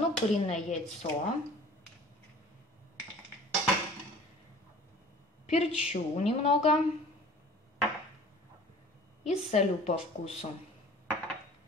куриное яйцо, перчу немного и солю по вкусу.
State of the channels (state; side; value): normal; both; correlation 0.46